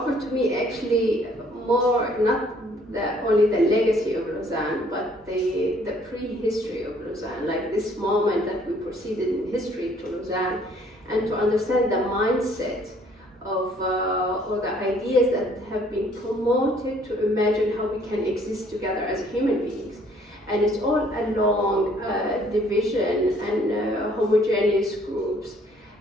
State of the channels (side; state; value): both; normal; correlation 0.61